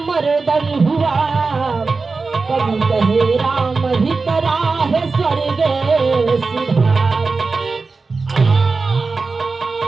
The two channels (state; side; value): quieter; left; 4.1 dB